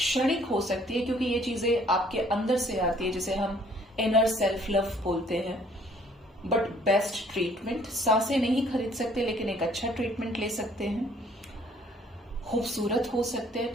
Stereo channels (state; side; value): normal; both; correlation 0.60